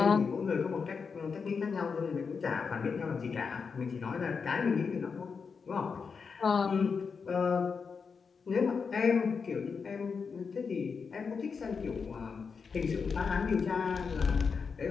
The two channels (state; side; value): quieter; right; 5.5 dB